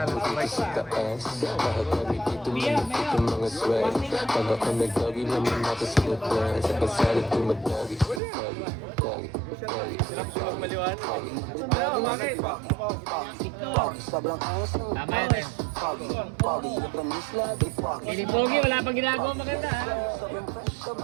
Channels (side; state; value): left; drops out; at 8.2 s